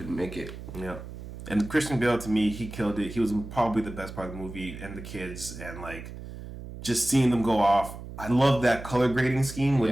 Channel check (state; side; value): noise; right; hum, 11 dB below the sound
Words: make it. Yeah. And Christian Bale, to me, he killed it. He was probably the best part of the movie, and the kids, and, like... just seeing them go off. I love that color grading scheme where